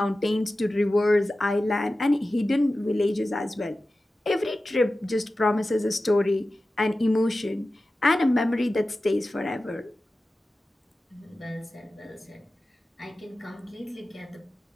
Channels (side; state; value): both; normal; correlation 0.95